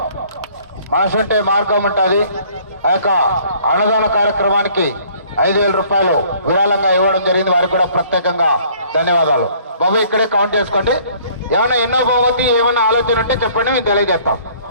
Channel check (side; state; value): both; inverted; correlation -0.56